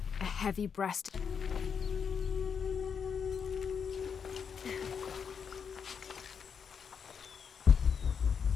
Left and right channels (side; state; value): right; quieter; 6.7 dB